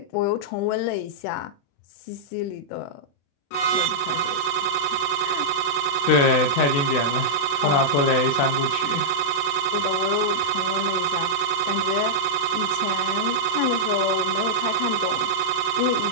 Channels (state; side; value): late; right; 35 ms